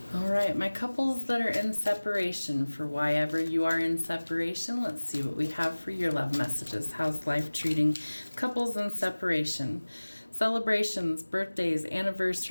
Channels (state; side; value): inverted; both; correlation -1.00